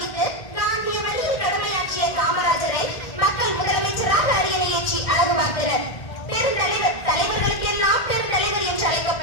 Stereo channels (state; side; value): late; right; 1.6 ms